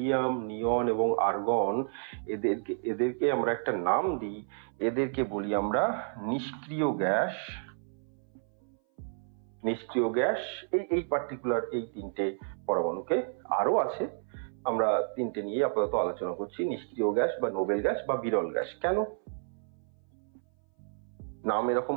নিয়ন এবং আর্গন, এদেরকে আমরা একটা নাম দিই, এদেরকে বলি আমরা নিষ্ক্রিয় গ্যাস। এই পার্টিকুলার এই 3টে পরমাণুকে, আরো আছে, আমরা 3টে নিয়ে আপাতত আলোচনা করছি। নিষ্ক্রিয় গ্যাস বা নোবেল গ্যাস বা বিরল গ্যাস। কেন নাম এরকম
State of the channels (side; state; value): left; silent; 57 dB below the other